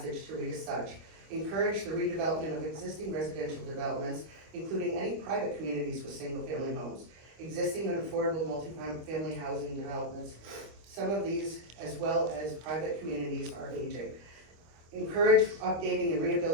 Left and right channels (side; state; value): left; late; 25 ms